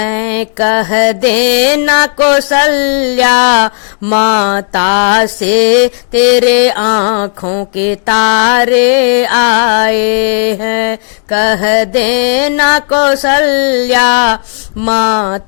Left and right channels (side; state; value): right; silent; digital silence